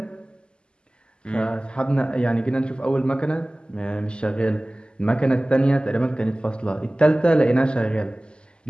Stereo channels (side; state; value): right; late; 0.049 ms